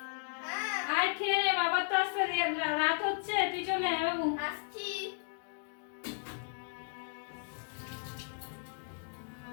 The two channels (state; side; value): silent; right; digital silence